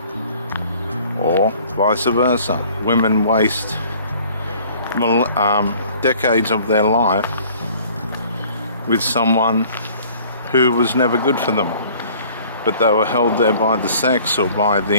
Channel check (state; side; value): inverted; both; correlation -0.53